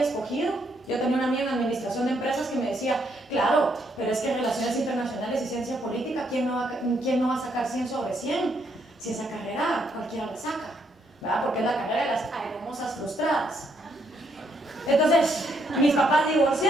escogido. Yo tenía una amiga en administración de empresas que me decía, claro, pero es que relaciones internacionales y ciencia política, ¿quién no va a sacar 100 sobre 100? Si esa carrera cualquiera la saca, ¿verdad? Porque es la carrera de las hermosas frustradas. Entonces, mis papás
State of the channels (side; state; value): both; normal; correlation 0.73